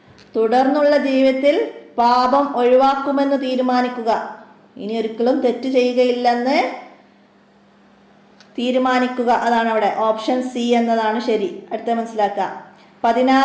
തുടർന്നുള്ള ജീവിതത്തിൽ പാപം ഒഴിവാക്കുമെന്ന് തീരുമാനിക്കുക, ഇനി ഒരിക്കലും തെറ്റ് ചെയ്യുകയില്ലെന്ന് തീരുമാനിക്കുക. അതാണ് അവിടെ ഓപ്ഷൻ സി എന്നതാണ് ശരി. അടുത്ത മനസ്സിലാക്കുക.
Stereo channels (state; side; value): identical; both; correlation 1.00